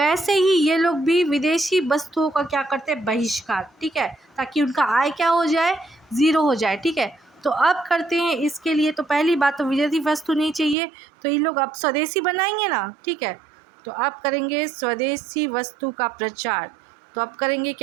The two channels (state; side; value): drops out; left; at 10.8 s